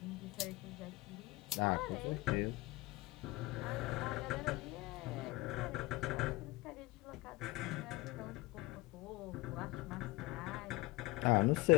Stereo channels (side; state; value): right; quieter; 21.1 dB